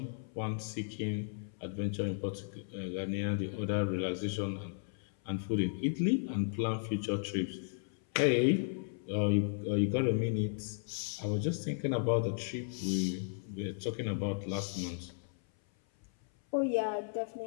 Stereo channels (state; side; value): silent; right; 54 dB below the other